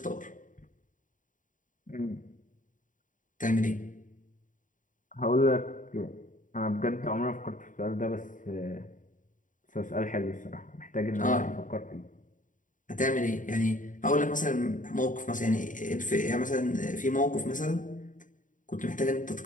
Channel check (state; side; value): late; right; 0.38 ms